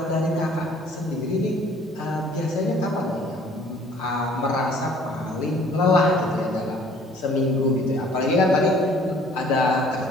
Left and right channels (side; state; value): both; normal; correlation 0.55